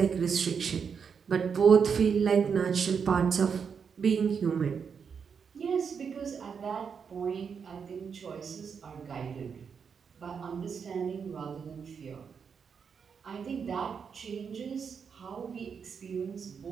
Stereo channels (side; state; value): left; quieter; 6.4 dB